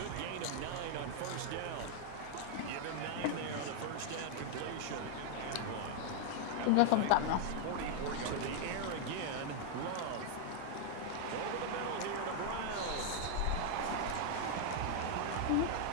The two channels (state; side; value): different; both; correlation 0.00